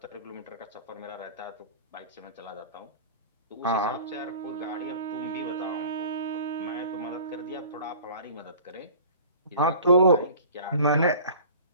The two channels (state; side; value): inverted; both; correlation -0.43